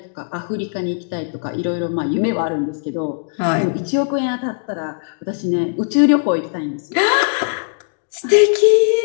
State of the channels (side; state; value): right; silent; digital silence